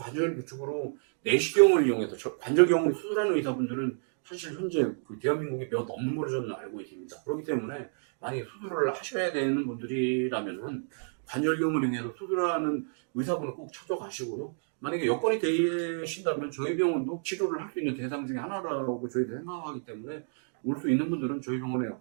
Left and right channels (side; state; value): left; silent; digital silence